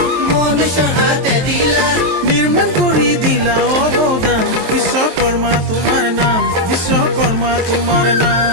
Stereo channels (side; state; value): left; late; 23 ms